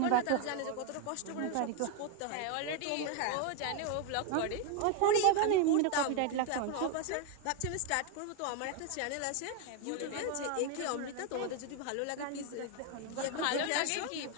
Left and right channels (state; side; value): different; both; correlation 0.01